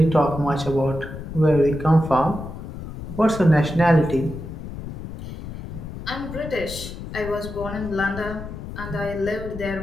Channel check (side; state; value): left; noise; rumble, 10 dB below the sound